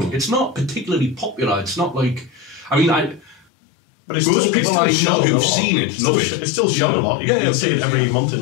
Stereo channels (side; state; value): right; drops out; at 3.5 s